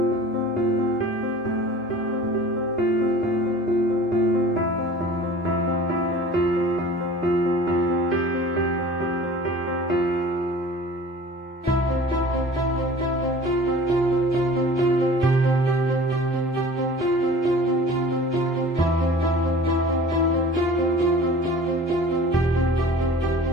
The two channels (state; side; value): normal; both; correlation 0.43